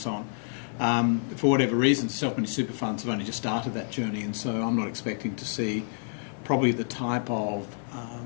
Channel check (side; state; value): right; silent; digital silence